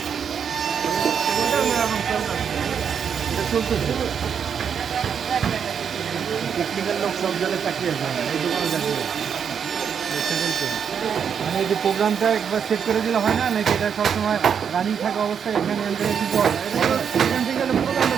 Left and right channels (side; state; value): left; quieter; 7.4 dB